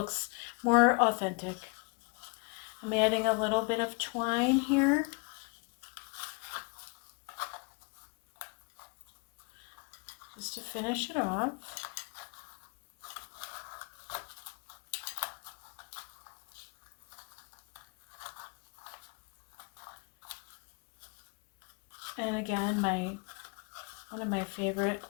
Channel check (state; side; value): quieter; right; 32.2 dB